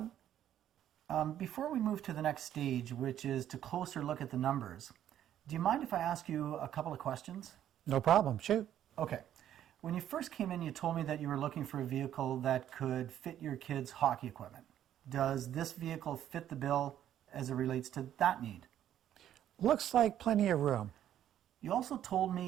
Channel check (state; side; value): quieter; left; 11.0 dB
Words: Before we move to the next stage, which is to closer look at the numbers, do you mind if I ask you a couple of questions? No problem. Shoot. Okay. When you first came in, you told me that you were looking for a vehicle that could fit your kids' hockey equipment. Does this vehicle fit the bill as it relates to that need? Looks like plenty of room. You also told